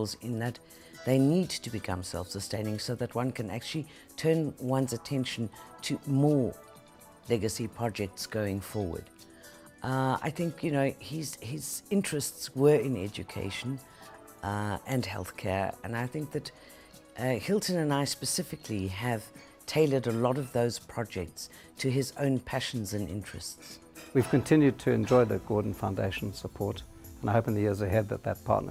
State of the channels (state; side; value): identical; both; correlation 1.00